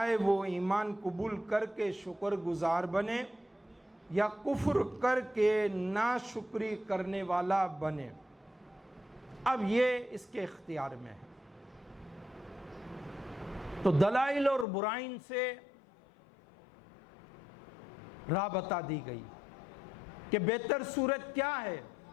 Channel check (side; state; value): right; drops out; at 14.7 s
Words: وہ ایمان قبول کر کے شکر گزار بنے یا کفر کر کے ناشکری کرنے والا بنے، اب یہ اس کے اختیار میں ہے۔ تو دلائل اور برائن سے راہ بتا دی گئی کہ بہتر صورت کیا ہے،